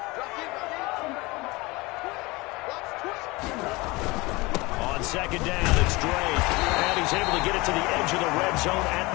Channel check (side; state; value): right; quieter; 23.3 dB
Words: On 2nd down, it's Drake. And he's able to get it to the edge of the red zone at